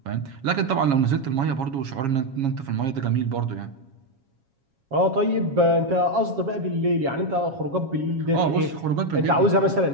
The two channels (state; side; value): late; left; 7.3 ms